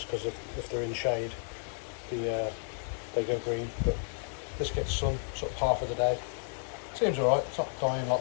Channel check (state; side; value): silent; right; digital silence